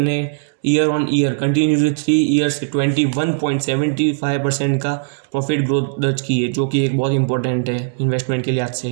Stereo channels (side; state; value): left; silent; digital silence